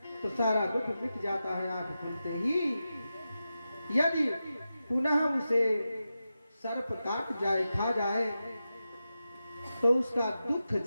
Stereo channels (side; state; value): both; inverted; correlation -0.91